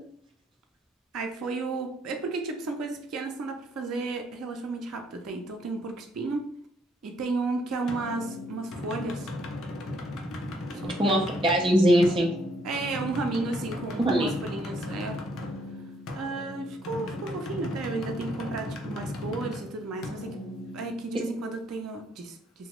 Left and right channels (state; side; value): normal; both; correlation 0.69